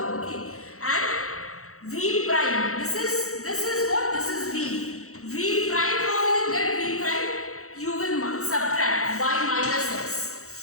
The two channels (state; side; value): late; right; 0.64 ms